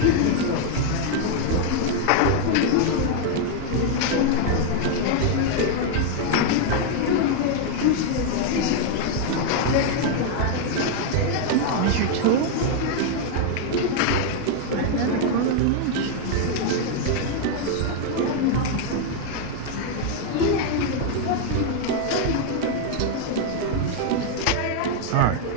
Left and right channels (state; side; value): different; both; correlation 0.00